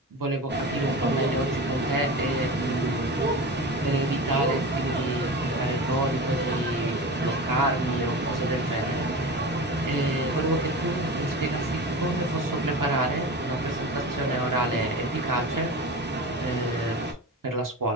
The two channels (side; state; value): both; normal; correlation 0.30